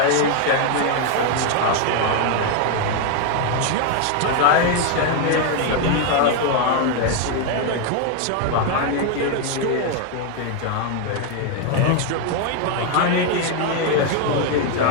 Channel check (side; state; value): both; different; correlation 0.01